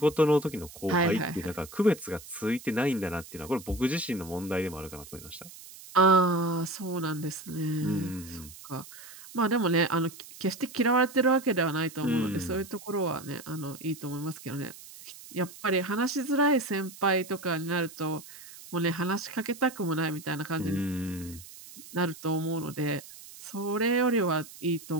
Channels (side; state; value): right; noise; hiss, 17 dB below the sound